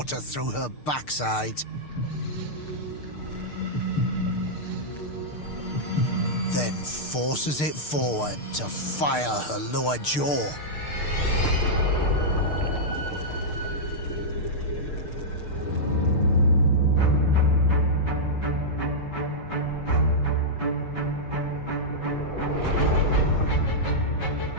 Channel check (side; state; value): right; late; 6.6 ms